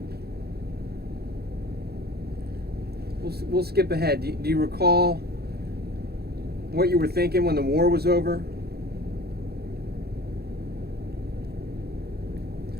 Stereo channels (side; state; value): left; late; 0.46 ms